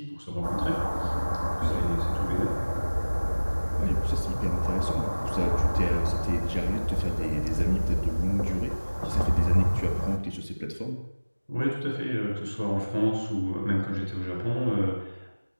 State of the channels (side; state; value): both; inverted; correlation -1.00